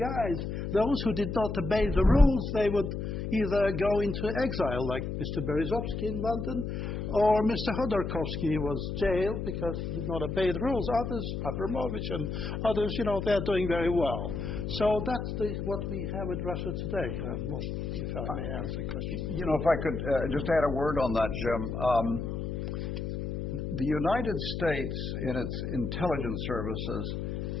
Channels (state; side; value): noise; left; hum, 4 dB below the sound